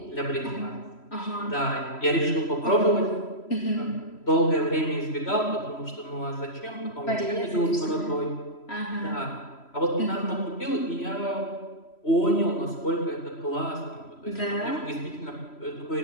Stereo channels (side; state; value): right; late; 3.1 ms